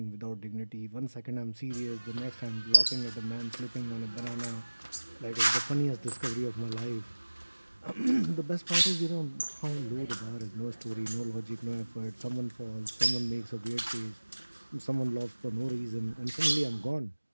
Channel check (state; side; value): inverted; both; correlation -1.00